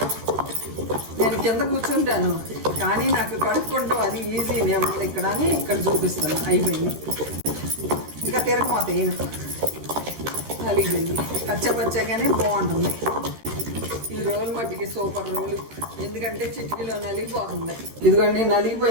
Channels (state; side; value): late; left; 13 ms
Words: నేను కింద కూర్చుంటాను కానీ నాకు కడుక్కుంటాం అది ఈజీ. నేను ఇక్కడ అని ఇక్కడ చూపిస్తాను. అయిపోయింది. ఇంకా తిరగమాత ఏను నలిగింది, పచ్చగానే బాగుంటుంది. ఈ రోల్ మట్టికి సూపర్ రోలు, ఎందుకంటే చిటికీలో నలిగిపోతుంది. ఇదిగోండి